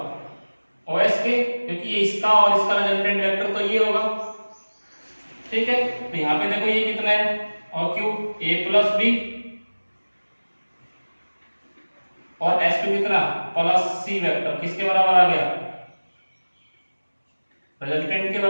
ओ एस के, क्योंकि ये इसका और इसका रिजल्टेंट वेक्टर तो ये होगा, ठीक है। तो यहां पे देखो ये कितना है, O Q A plus B, और एस क्यू कितना प्लस सी वेक्टर, किसके बराबर आ गया, रिजल्टेंट के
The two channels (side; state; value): both; inverted; correlation -1.00